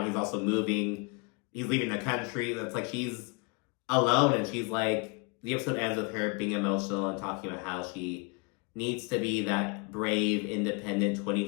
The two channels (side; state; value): right; quieter; 31.8 dB